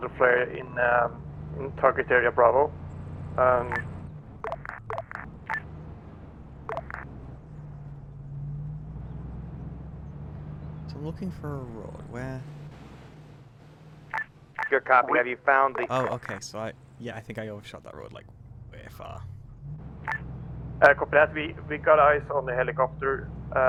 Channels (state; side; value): identical; both; correlation 1.00